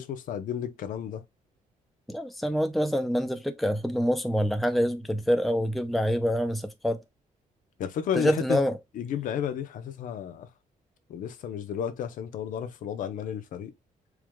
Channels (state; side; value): normal; both; correlation 0.83